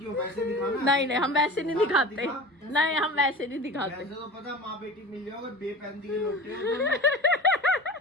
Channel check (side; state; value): both; normal; correlation 0.35